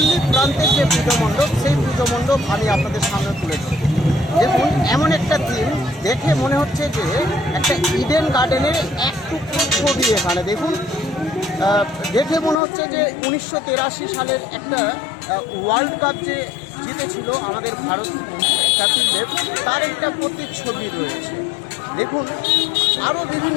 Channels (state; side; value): drops out; right; at 12.6 s